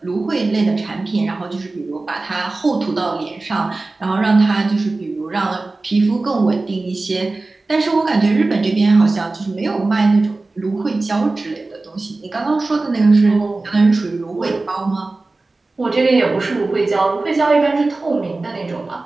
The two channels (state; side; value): quieter; left; 3.3 dB